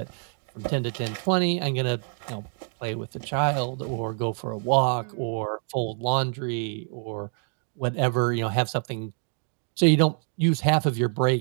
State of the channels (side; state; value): left; silent; 56 dB below the other